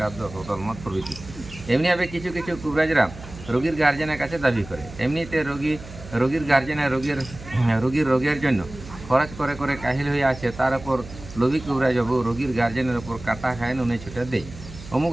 10 বোতল মদ প্রভৃতি। এমনিভাবে কিছু কবিরাজরা রোগীর গার্জেনের কাছে দাবি করে। এমনিতে রোগীর গার্জেনের রোগীর রোগের জন্য খরচ করে কাহিল হয়ে আছে, তার উপর লোভী কবিরাজবাবু রোগীর গার্জেনের ওপর কাটা খায়, নুনে ছুটে দেয়, অমুক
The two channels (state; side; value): noise; right; hum, 15 dB below the sound